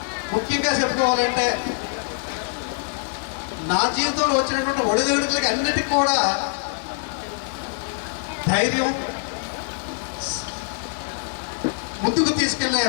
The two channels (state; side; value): silent; right; 63 dB below the other